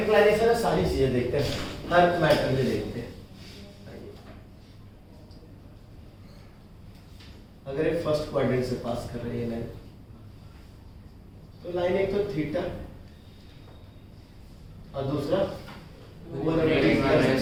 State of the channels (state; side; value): identical; both; correlation 1.00